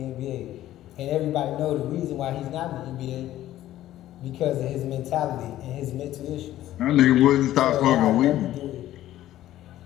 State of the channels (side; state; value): right; quieter; 13.7 dB